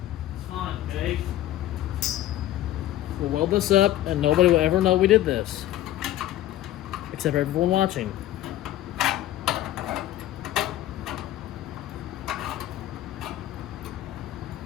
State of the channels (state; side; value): quieter; right; 13.9 dB